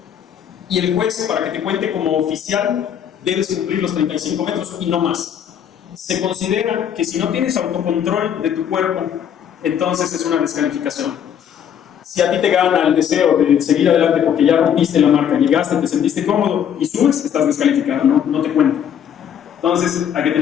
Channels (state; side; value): quieter; right; 8.9 dB